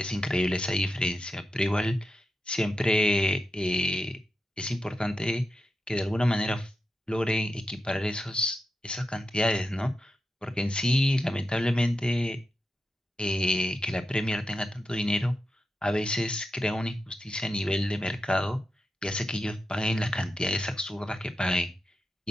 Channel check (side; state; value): both; normal; correlation 0.88